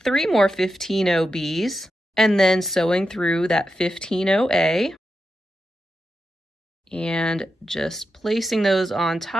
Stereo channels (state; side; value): normal; both; correlation 0.88